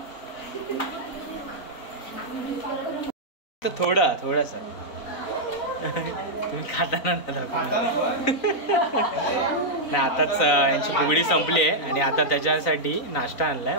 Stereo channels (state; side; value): late; right; 3.9 ms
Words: तर थोडंसं तुम्ही खाताना ना दाखवणार. नाही आताच यांची फुगडी संपली आहे आणि आता त्याच्यासाठी नाश्ता आणलाय